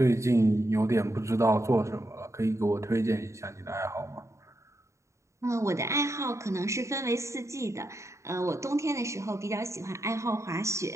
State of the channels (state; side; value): late; left; 0.14 ms